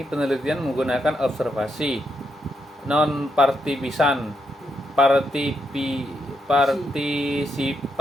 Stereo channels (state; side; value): normal; both; correlation 0.80